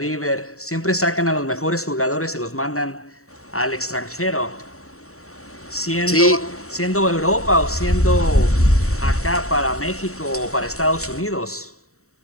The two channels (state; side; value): late; right; 0.64 ms